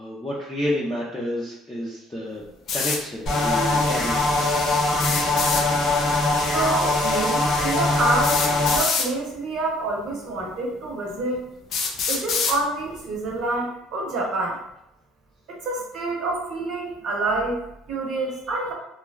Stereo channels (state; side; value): normal; both; correlation 0.59